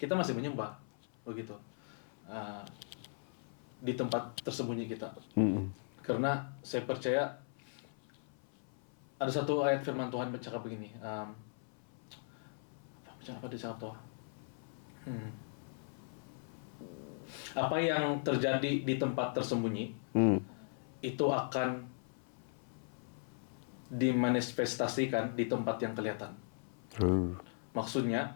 masih menyembah, begitu. Di tempat tersembunyi kita. Karena saya percaya ada satu ayat firman Tuhan bercakap begini. Apa dia cakap tuh? Apa yang terjadi di tempat tersembunyi itu akan dimanifestasikan di tempat yang kelihatan. Maksudnya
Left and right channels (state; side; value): silent; right; 52 dB below the other